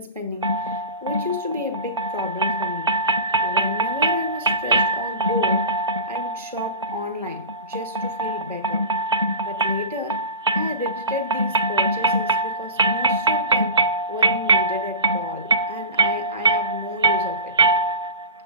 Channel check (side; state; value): both; inverted; correlation -0.32